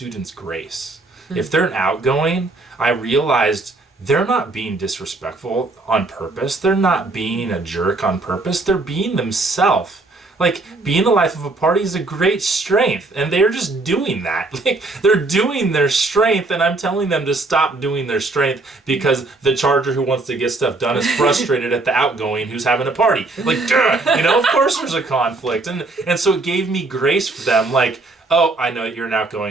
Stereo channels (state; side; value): quieter; left; 3.3 dB